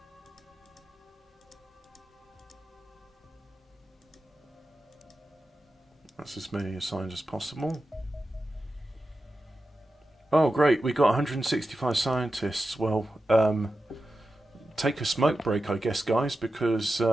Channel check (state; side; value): normal; both; correlation 0.92